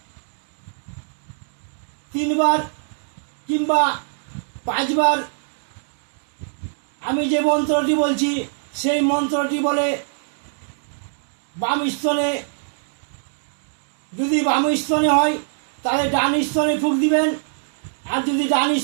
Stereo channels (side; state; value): left; silent; digital silence